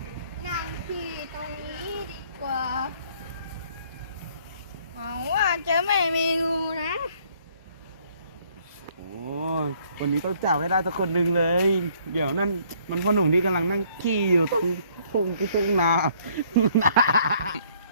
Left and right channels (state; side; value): inverted; both; correlation -0.62